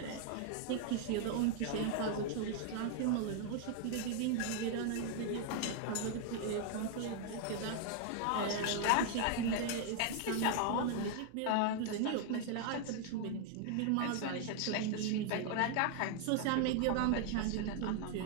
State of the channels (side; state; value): both; different; correlation 0.00